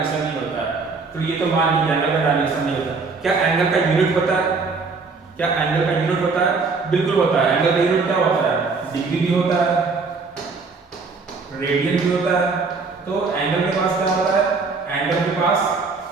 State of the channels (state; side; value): quieter; left; 4.4 dB